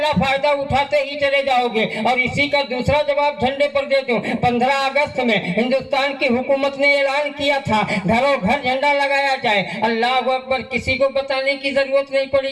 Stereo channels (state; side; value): identical; both; correlation 1.00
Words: فائدہ اٹھاتے ہی چلے جاؤ گے۔ اور اسی کا دوسرا جواب جھنڈے پر دے دوں۔ 15 اگست میں ہندوستان کی حکومت نے اعلان کیا تھا گھروں گھر جھنڈا لگایا جائے۔ اللہ اکبر، کسی کو بتانے کی ضرورت نہیں پڑی